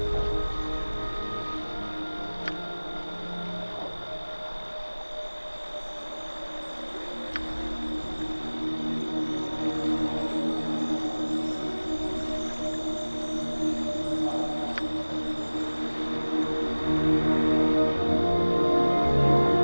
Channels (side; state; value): both; inverted; correlation -1.00